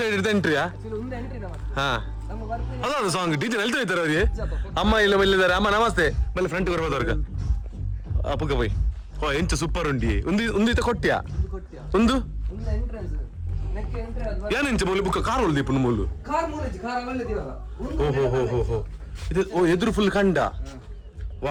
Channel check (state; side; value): identical; both; correlation 1.00